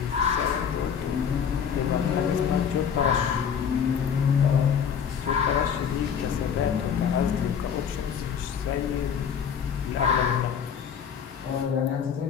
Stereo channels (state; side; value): quieter; right; 7.5 dB